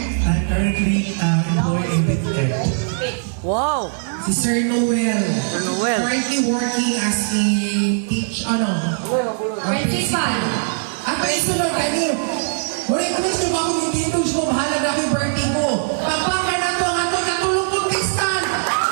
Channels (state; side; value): silent; left; digital silence